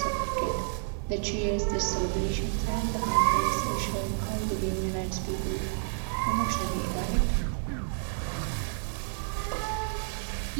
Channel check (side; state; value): left; silent; digital silence